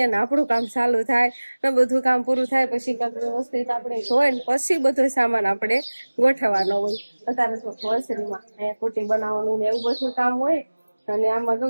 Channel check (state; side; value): inverted; both; correlation -1.00